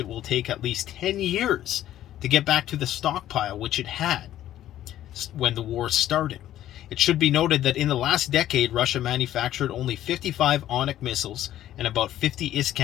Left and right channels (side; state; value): right; quieter; 12.7 dB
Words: will take at least 10 years to get back to the stockpile which it had when the war started. It should be noted that in the last decade, Russia manufactured only 55 Onyx missiles and about 50